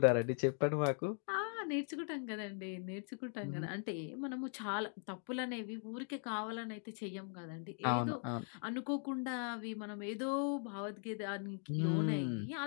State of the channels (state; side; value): silent; right; 51 dB below the other